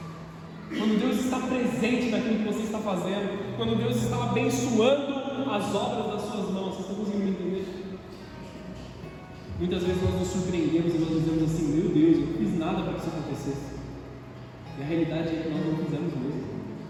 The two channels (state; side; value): identical; both; correlation 1.00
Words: quando Deus está presente naquilo que você está fazendo, quando Deus está abençoando as obras das suas mãos. Vocês estão conseguindo entender? Muitas vezes nós nos surpreendemos e nós dizemos assim: meu Deus, eu não fiz nada para que isso acontecesse. E a realidade é que nós não fizemos mesmo.